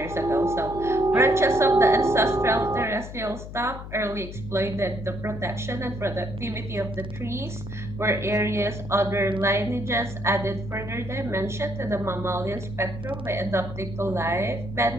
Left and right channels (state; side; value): noise; left; hum, 11 dB below the sound